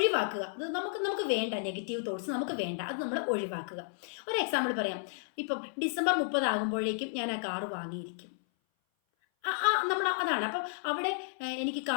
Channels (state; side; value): silent; right; 56 dB below the other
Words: അത് നമുക്ക് വേണ്ട, നെഗറ്റീവ് തോട്ട്സ് നമുക്ക് വേണ്ട, അത് നമ്മൾ ഒഴിവാക്കുക. ഒരു എക്സാമ്പിൾ പറയാം. ഇപ്പം ഡിസംബർ 30 ആകുമ്പോഴേക്കും ഞാൻ ആ കാറ് വാങ്ങിയിരിക്കും. നമ്മൾ അതാണ്. അപ്പം അവിടെ എനിക്ക്